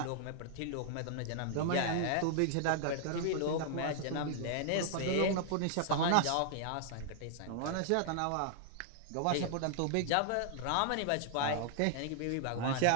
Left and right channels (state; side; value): different; both; correlation -0.01